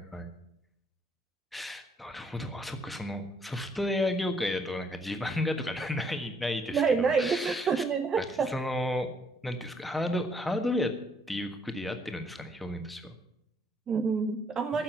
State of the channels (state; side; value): normal; both; correlation 0.68